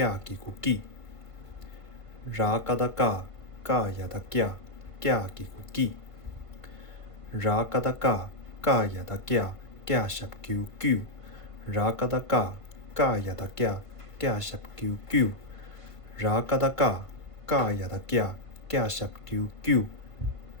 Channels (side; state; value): right; late; 1.5 ms